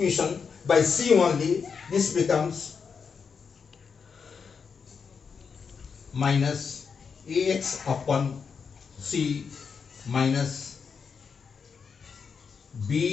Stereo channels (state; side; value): quieter; right; 5.9 dB